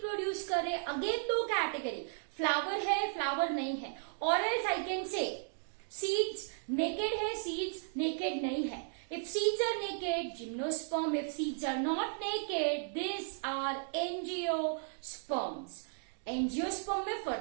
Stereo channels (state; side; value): silent; left; digital silence